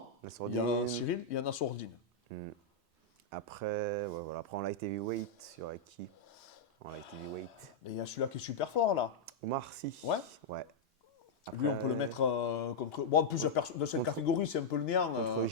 il y a Nassourdine. Cyril, il y a Nassourdine. Après, ouais, voilà. Après, en light heavyweight, il y aurait qui? En light heavyweight. Et il y a celui-là qui est super fort, là. Omar Sy. Ouais. Ouais. Lui, on peut le mettre contre. Bon, en plus, de cette catégorie, c'est un peu le néant. Contre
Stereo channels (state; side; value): quieter; right; 3.3 dB